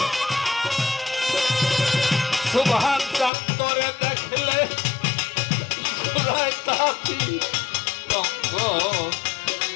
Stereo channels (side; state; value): right; drops out; at 3.3 s